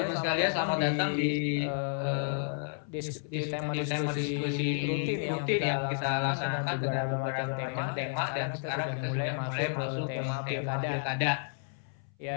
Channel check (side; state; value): right; silent; 57 dB below the other